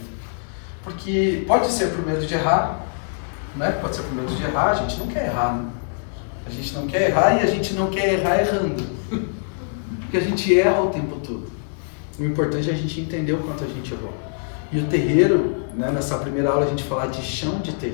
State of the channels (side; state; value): right; silent; digital silence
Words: Porque pode ser por medo de errar, né? Pode ser por medo de errar, a gente não quer errar, né? A gente não quer errar e a gente não quer errar errando. Porque a gente erra o tempo todo. O importante é a gente entender o quanto a gente errou. E o terreiro, né, nessa primeira aula a gente falar de chão de